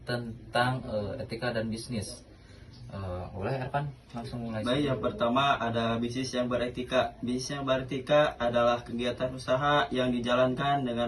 tentang etika dan bisnis. Boleh Ervan langsung mulai. Baik, yang pertama ada bisnis yang beretika. Bisnis yang beretika adalah kegiatan usaha yang dijalankan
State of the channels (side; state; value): both; identical; correlation 1.00